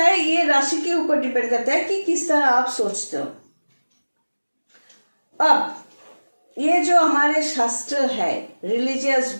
ये राशि के ऊपर डिपेंड करता है कि किस तरह आप सोचते हो। अब ये जो हमारे शास्त्र है, रिलीजियस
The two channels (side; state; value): both; inverted; correlation -1.00